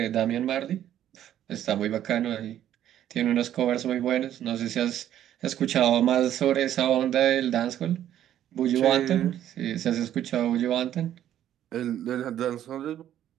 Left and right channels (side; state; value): left; quieter; 11.3 dB